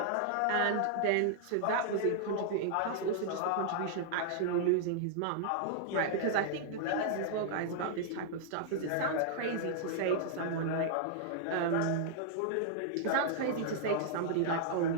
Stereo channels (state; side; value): different; both; correlation -0.01